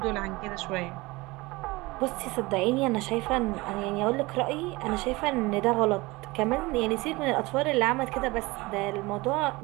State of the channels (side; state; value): left; quieter; 22.3 dB